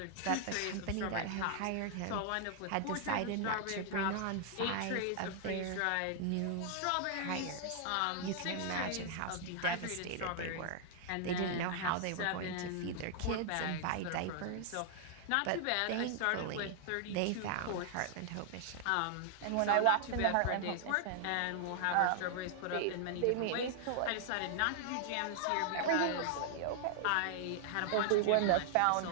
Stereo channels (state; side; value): different; both; correlation 0.00